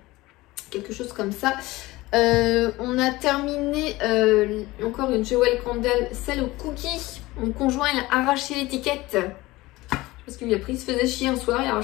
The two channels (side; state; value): right; quieter; 19.6 dB